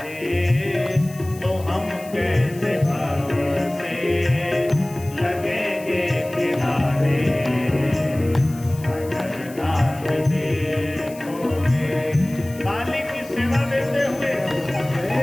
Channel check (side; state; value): left; noise; hiss, 20 dB below the sound